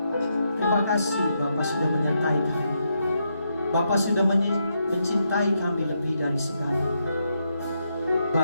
terima kasih Bapa sudah menyertai kami. Bapa sudah mencintai kami lebih dari segala.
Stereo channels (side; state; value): both; inverted; correlation -0.81